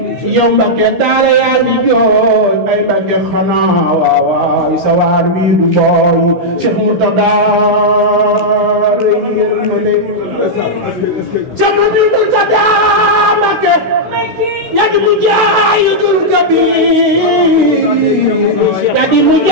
yow Mbàkke daara yaa ngi jooy ay Mbàkke xanaa waaw sa waar wi du booy Seex Murtada yërmande Seex Murtada Mbàkke yadi mujahidul kabir yadi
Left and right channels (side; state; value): left; late; 16 ms